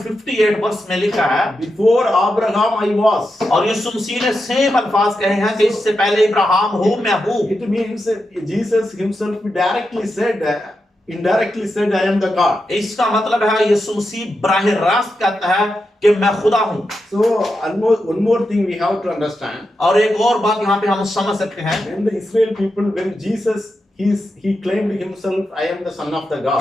58 वर्ष में लिखा है, Before Abraham I was. और यीशु मसीह ने सेम अल्फाज कहे हैं कि इससे पहले इब्राहिम हूँ मैं हूँ। It means Jesus Himself directly said, indirectly said, I am the God. इसका मतलब है यीशु मसीह बराह रास्त कहता है कि मैं खुदा हूँ। So one more thing we have to understand. और एक और बात यहाँ पे हम समझ सकते हैं, When the Israel people, when Jesus he claimed himself, I am the son of the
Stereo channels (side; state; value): both; normal; correlation 0.87